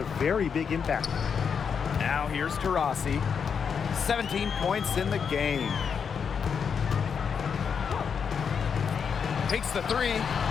very big impact. Now here's Taurasi. 17 points in the game. Takes the three.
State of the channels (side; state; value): right; quieter; 6.6 dB